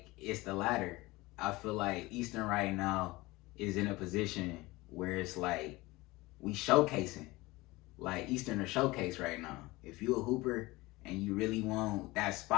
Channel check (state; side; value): quieter; right; 21.0 dB